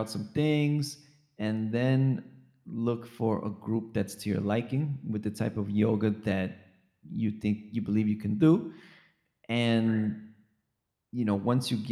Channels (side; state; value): both; identical; correlation 1.00